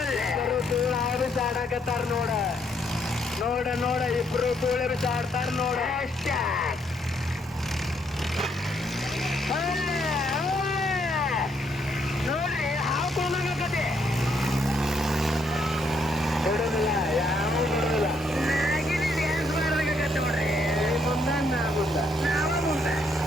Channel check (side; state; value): both; normal; correlation 0.73